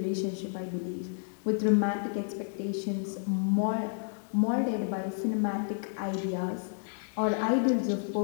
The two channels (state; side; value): silent; right; digital silence